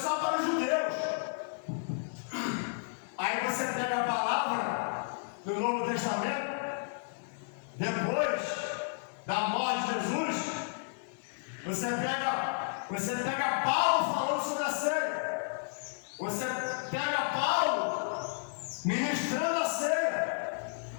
para os judeus. Aí você pega a palavra do Novo Testamento, depois da morte de Jesus, você pega Paulo falando sobre a ceia, você pega Paulo ministrando a ceia,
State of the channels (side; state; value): right; silent; 56 dB below the other